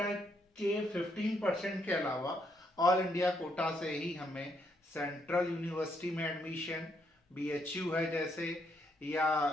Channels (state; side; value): normal; both; correlation 0.74